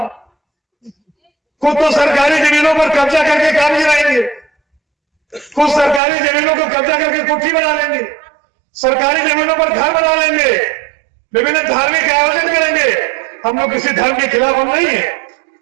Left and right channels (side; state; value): left; drops out; at 6.0 s